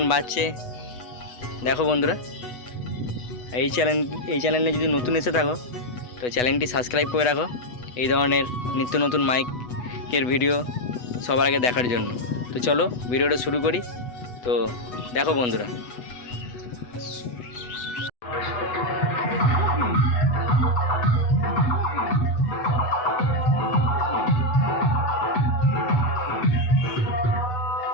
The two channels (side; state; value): right; late; 8.1 ms